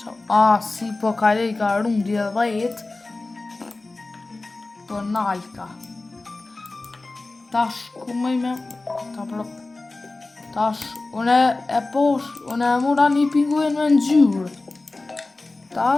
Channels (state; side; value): quieter; right; 3.2 dB